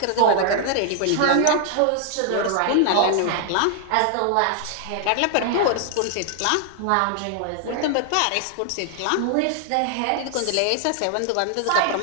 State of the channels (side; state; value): both; different; correlation 0.00